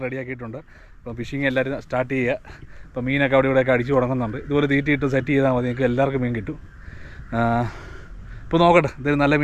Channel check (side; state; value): both; identical; correlation 1.00